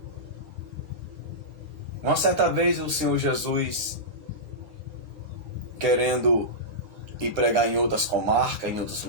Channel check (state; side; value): late; left; 10 ms